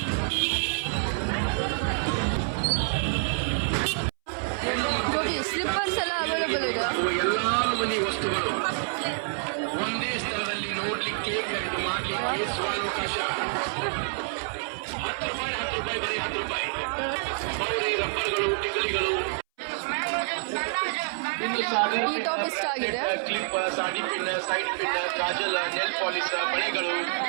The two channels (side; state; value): left; silent; 60 dB below the other